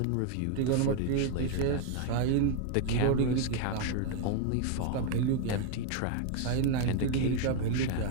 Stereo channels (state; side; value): different; both; correlation 0.01